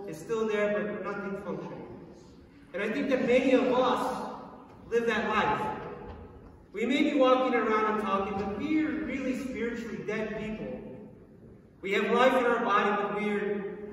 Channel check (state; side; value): identical; both; correlation 1.00